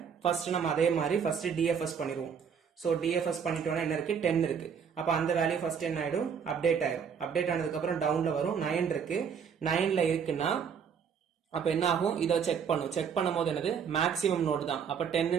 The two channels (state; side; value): quieter; left; 7.0 dB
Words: ஃபர்ஸ்ட் நம்ம அதே மாதிரி ஃபர்ஸ்ட் டிஎஃப்எஸ் பண்ணிடுவோம். சோ டிஎஃப்எஸ் பண்ணிட்டோம்னா என்ன இருக்கு, 10 இருக்கு. அப்ப அந்த வேல்யூ ஃபர்ஸ்ட் என்ன ஆயிடும், அப்டேட் ஆயிடும். அப்டேட் ஆனதுக்கு அப்புறம் டவுன்ல வரும், 9 இருக்கு. 9ல இருக்குன்னா அப்ப என்ன ஆகும், இதை செக் பண்ணும். செக் பண்ணும் போது என்னது, மேக்ஸிமம் நோடு தான். அப்ப